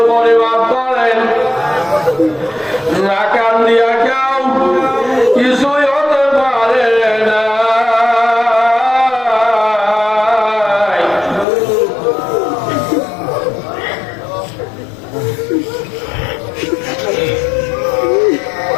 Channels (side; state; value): right; drops out; at 11.5 s